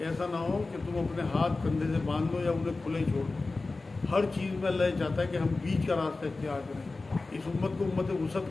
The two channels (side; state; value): right; quieter; 3.5 dB